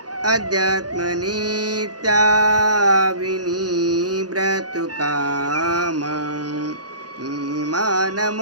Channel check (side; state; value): left; late; 0.69 ms